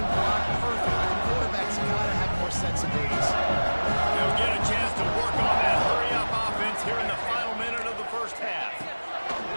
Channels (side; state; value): both; inverted; correlation -1.00